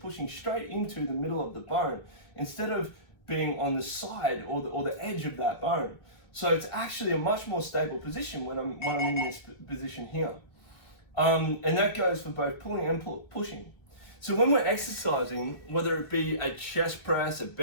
straight into the middle of the bone instead of being on the side or the edge of that bone. So it's actually a much more stable position when I'm in this position here. And that goes for both pulling and pushing. So when we're exercising, whether it be a chest press, a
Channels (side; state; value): right; late; 2.4 ms